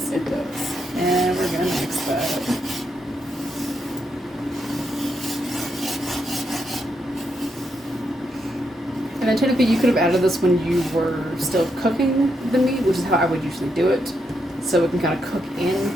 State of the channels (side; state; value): both; normal; correlation 0.81